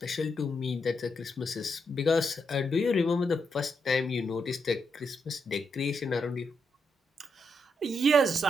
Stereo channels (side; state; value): both; normal; correlation 0.81